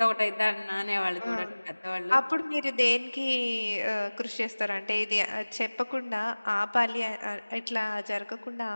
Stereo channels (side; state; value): both; inverted; correlation -1.00